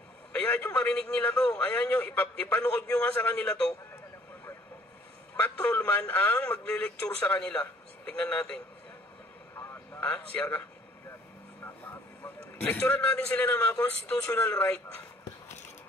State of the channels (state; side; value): normal; both; correlation 0.58